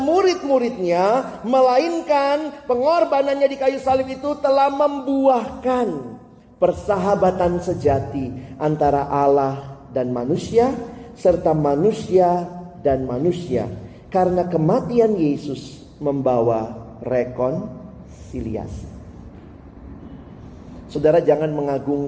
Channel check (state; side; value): identical; both; correlation 1.00